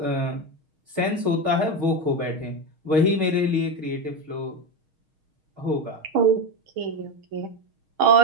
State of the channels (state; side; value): late; left; 6.4 ms